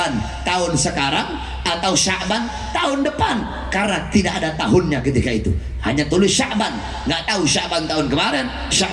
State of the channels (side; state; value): both; identical; correlation 1.00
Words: tahun sekarang, atau Sya'ban tahun depan? Karena tidak ada tahunnya ketika itu, hanya tulis Sya'ban, nggak tahu Sya'ban tahun kemarin,